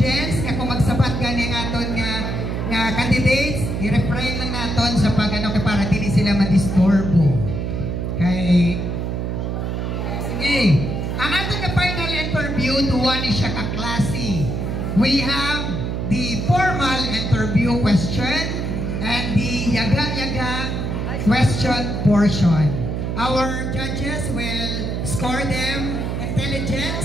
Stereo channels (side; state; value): right; noise; hum, 2 dB below the sound